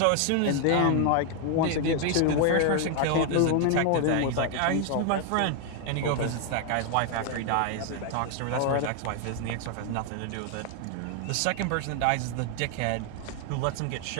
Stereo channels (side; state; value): both; different; correlation 0.00